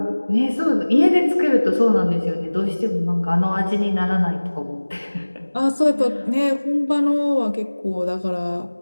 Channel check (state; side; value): inverted; both; correlation -1.00